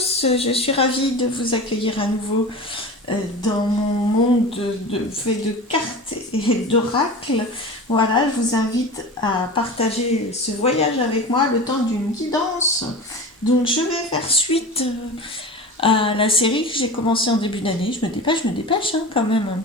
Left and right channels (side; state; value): both; normal; correlation 0.31